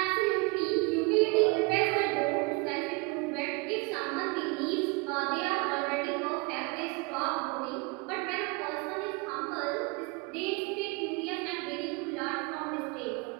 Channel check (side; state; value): left; quieter; 27.9 dB